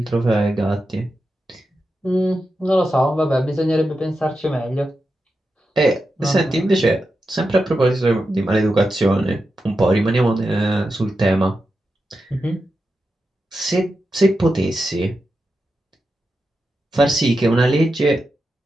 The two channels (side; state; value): both; normal; correlation 0.89